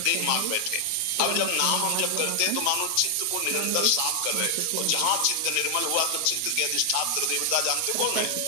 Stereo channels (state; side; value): different; both; correlation 0.00